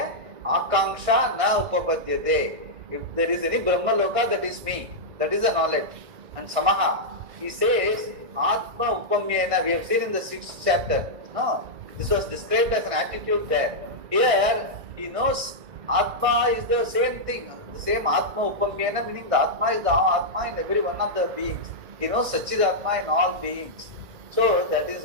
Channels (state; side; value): late; left; 1.5 ms